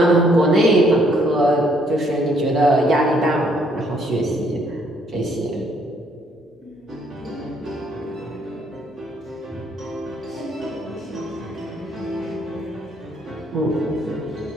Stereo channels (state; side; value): normal; both; correlation 0.67